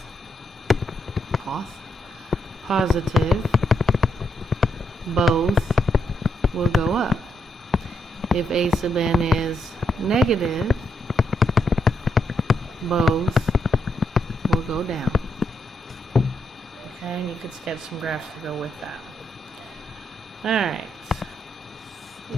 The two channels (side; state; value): both; normal; correlation 0.79